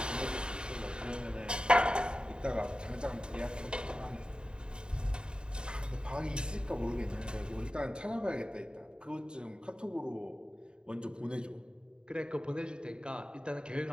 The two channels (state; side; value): late; left; 0.049 ms